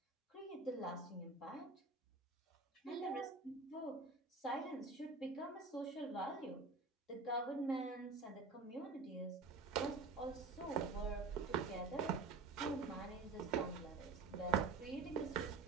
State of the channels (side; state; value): left; quieter; 4.2 dB